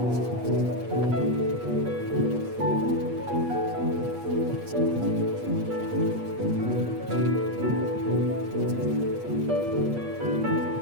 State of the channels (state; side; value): late; left; 8.4 ms